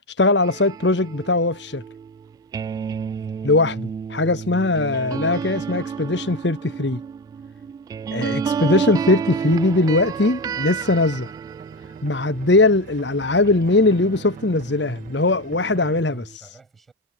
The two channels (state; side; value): normal; both; correlation 0.17